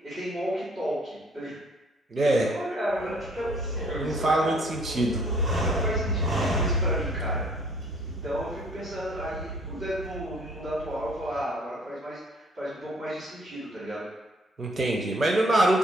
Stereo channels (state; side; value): normal; both; correlation 0.59